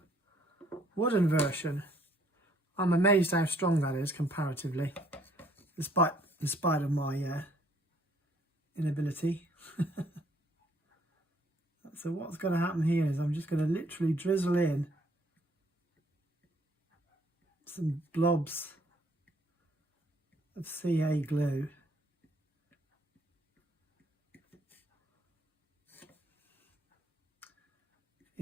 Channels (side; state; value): both; normal; correlation 0.63